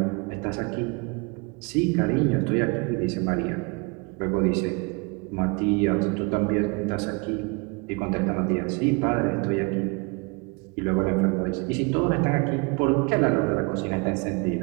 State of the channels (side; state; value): left; quieter; 30.3 dB